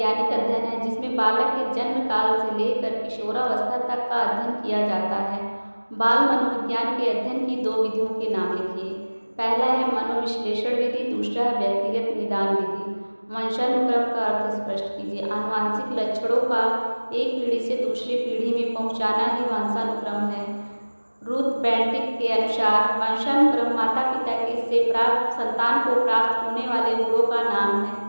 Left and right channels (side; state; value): both; inverted; correlation -1.00